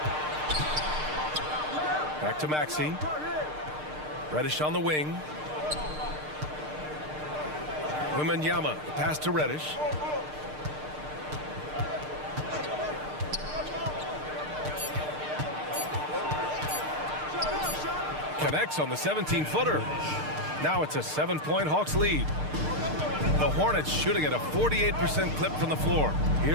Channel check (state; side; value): late; left; 6.6 ms